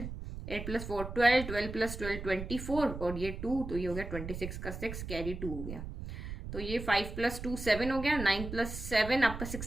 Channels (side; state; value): right; noise; rumble, 8 dB below the sound